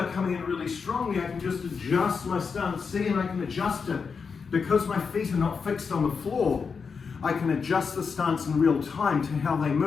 coming in really strongly, I can just adjust my stance. See, and I can adjust it. Because my feet are not fixed on the floor, I can adjust the stance in real time to how they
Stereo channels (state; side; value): quieter; right; 5.5 dB